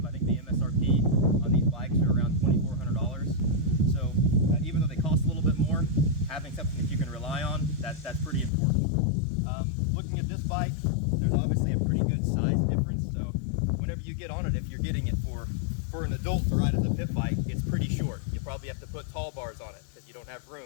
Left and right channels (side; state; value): right; drops out; at 8.5 s